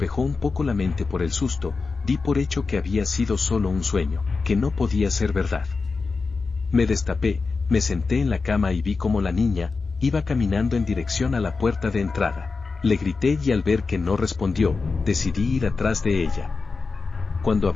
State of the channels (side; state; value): right; quieter; 4.3 dB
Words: un poco la mente por el susto, di por hecho que había sido solo un sueño, que no podía ser verdad. Me destapé, me senté en la cama y vi cómo la niña iba caminando en dirección a la puerta de entrada. Le grité y al ver que no respondió, decidí ir atrás de ella. Cuando